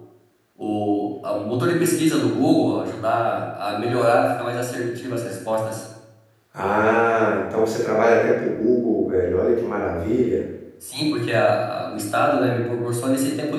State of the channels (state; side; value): identical; both; correlation 1.00